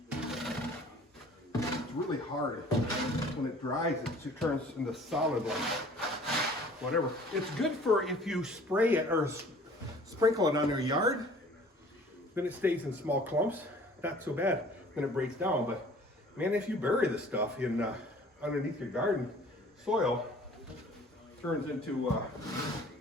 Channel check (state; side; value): normal; both; correlation 0.50